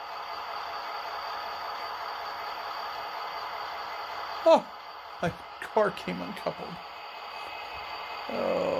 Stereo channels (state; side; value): identical; both; correlation 1.00